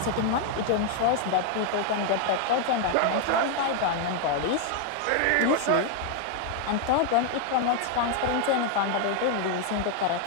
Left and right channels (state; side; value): different; both; correlation 0.00